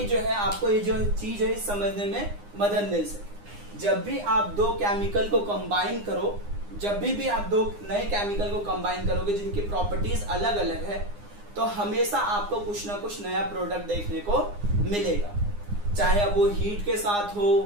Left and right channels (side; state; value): left; late; 9.8 ms